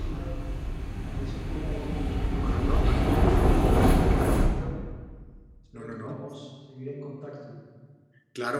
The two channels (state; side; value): identical; both; correlation 1.00